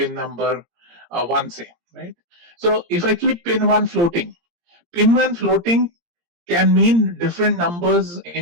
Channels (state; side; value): late; left; 17 ms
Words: number 1, say, right? So if I keep pin 1 floating can mean different numbers